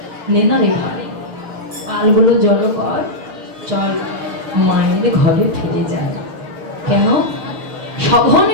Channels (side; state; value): left; late; 6.4 ms